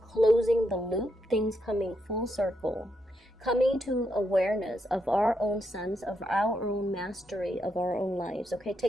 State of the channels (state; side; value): normal; both; correlation 0.80